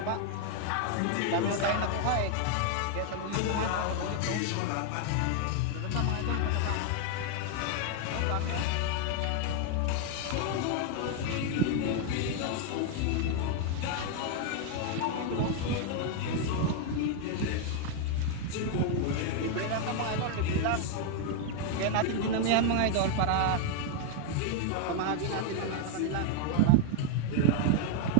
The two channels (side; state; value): both; different; correlation 0.00